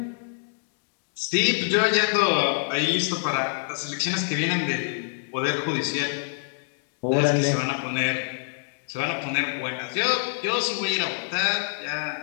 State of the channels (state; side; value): silent; right; digital silence